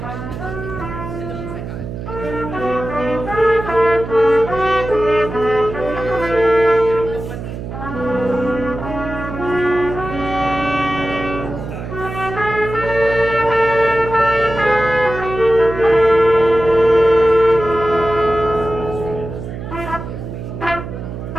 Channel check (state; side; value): noise; right; hum, 9 dB below the sound